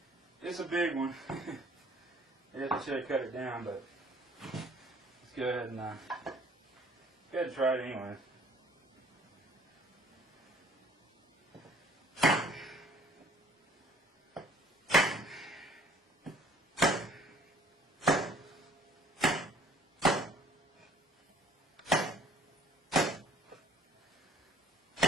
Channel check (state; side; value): normal; both; correlation 0.56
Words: It's a big one. I should have cut it down, but let's go ahead and try it anyway.